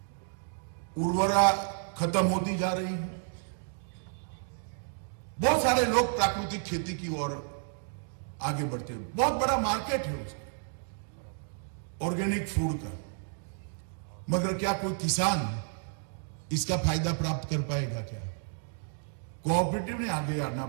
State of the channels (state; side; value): silent; left; 57 dB below the other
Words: उर्वरा खत्म होती जा रही है। बहुत सारे लोग प्राकृतिक खेती की ओर आगे बढ़ते हैं, बहुत बड़ा मार्केट है उसका, ऑर्गेनिक फूड का। मगर क्या कोई किसान इसका फायदा प्राप्त कर पाएगा क्या? कोऑपरेटिव ने आगे आना